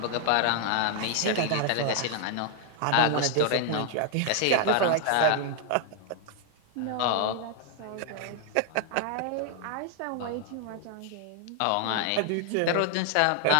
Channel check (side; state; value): both; different; correlation 0.00